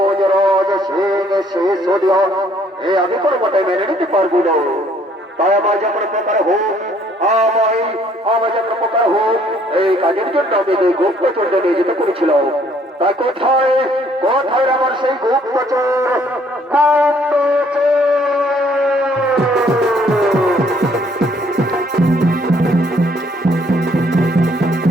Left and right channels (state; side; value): normal; both; correlation 0.63